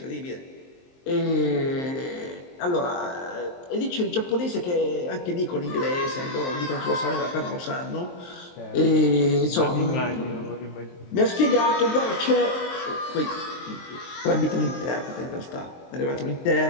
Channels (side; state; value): right; late; 23 ms